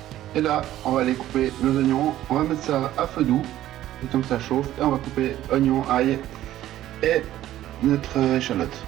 Et là, on va aller couper nos oignons. On va mettre ça à feu doux, le temps que ça chauffe, et on va couper oignons, ail et notre échalote.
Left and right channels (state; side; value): quieter; left; 13.5 dB